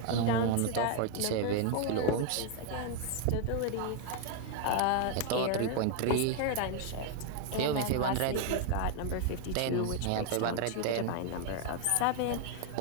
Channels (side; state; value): both; different; correlation 0.00